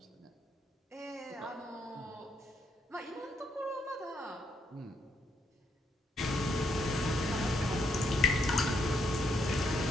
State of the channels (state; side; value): normal; both; correlation 0.75